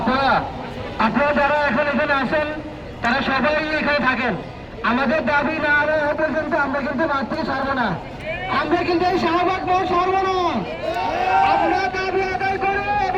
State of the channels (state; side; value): identical; both; correlation 1.00